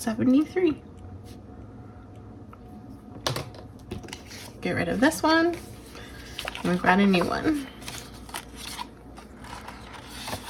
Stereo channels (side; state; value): both; identical; correlation 1.00